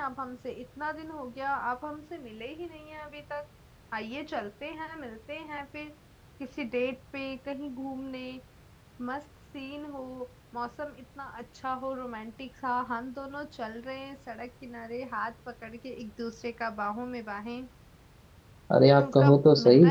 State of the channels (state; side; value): identical; both; correlation 1.00